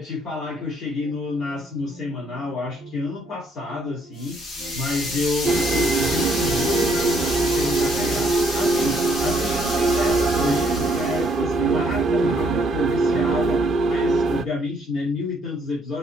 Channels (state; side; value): normal; both; correlation 0.68